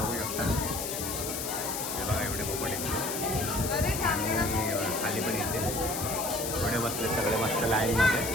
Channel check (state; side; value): noise; left; hiss, 4 dB below the sound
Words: शकता. हे बघा एवढे पोपट आहेत. आणि खाली पण येते, थोडे बसले सगळे मस्त लाईनमध्ये.